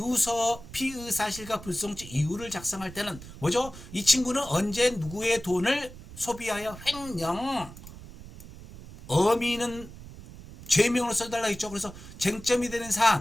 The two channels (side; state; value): right; noise; rumble, 16 dB below the sound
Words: 피의사실과 불송치 이유를 작성할 때는 뭐죠? 이 친구는 언제 누구의 돈을 소비하여 횡령 어미는 죄명으로 써달라 했죠. 그래서 쟁점이 되는